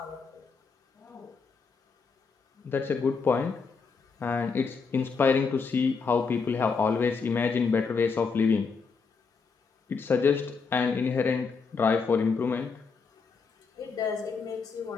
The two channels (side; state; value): right; quieter; 5.1 dB